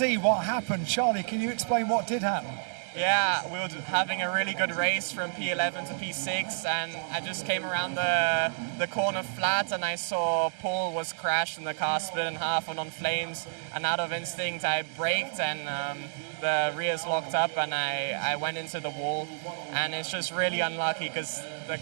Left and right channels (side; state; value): left; silent; digital silence